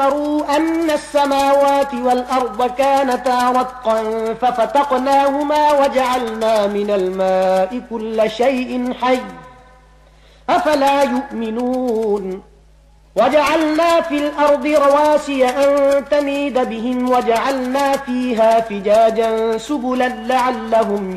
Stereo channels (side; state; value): both; identical; correlation 1.00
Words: أن السماوات والأرض كانتا رتقا ففتقناهما وجعلنا من الماء كل شيء حي أفلا يؤمنون. وجعلنا في الأرض رواسي أن تميد بهم وجعلنا فيها فجاجا سبلا لعلهم